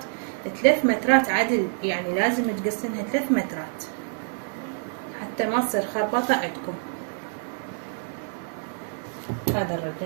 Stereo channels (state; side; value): silent; left; 60 dB below the other